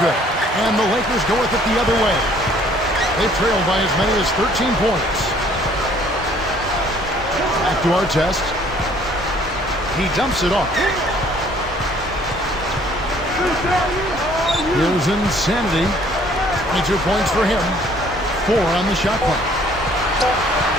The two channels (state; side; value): normal; both; correlation 0.59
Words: good. And the Lakers go with it the other way. They trailed by as many as 13 points. Back to Artest. He dumps it off. Here's Insanity. 22 points for him. 4 on the shot clock.